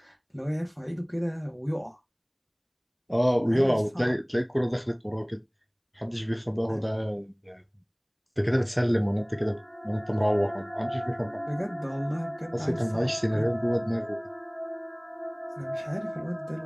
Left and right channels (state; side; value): identical; both; correlation 1.00